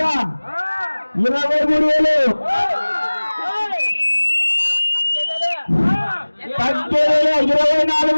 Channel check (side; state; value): both; inverted; correlation -1.00